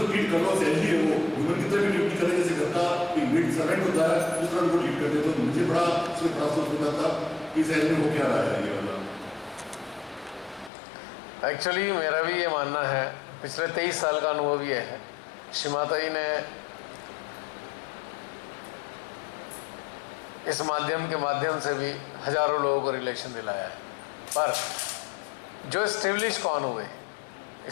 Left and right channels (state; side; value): drops out; right; at 10.7 s